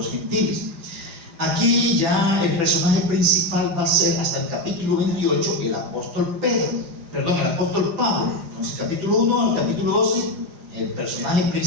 gentiles. Aquí ya el personaje principal va a ser, hasta el capítulo 28, el apóstol Pablo. Entonces, capítulo 1 al capítulo 12, el personaje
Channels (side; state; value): left; late; 4.9 ms